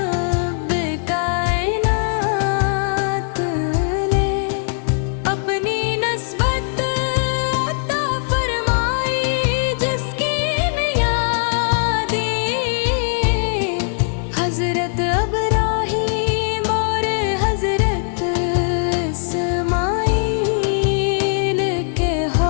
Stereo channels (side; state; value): right; silent; 66 dB below the other